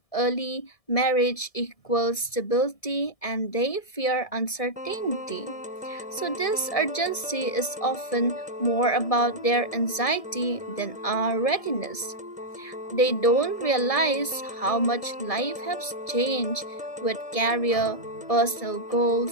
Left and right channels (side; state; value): right; late; 1.7 ms